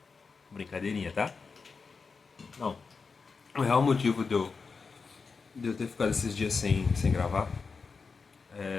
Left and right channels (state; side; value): quieter; right; 4.9 dB